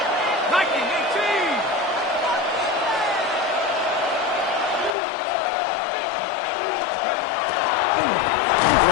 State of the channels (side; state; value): right; drops out; at 5.0 s